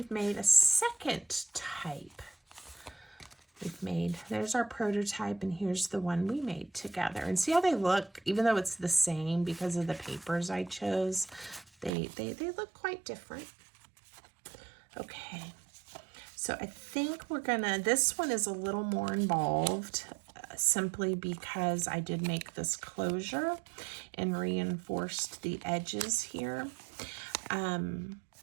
made a second type. There's our prototype, and here's the one we made together. And see how they look, even though it's the same because of the papers I chose, they look quite different. Okay, so I think we're gonna, this one is a little more involved, simply because I did make this closure and reinforced the edges here.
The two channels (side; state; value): left; drops out; at 11.9 s